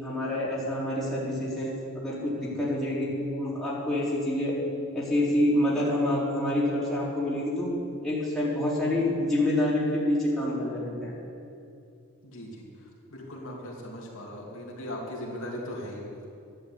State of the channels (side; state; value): both; normal; correlation 0.58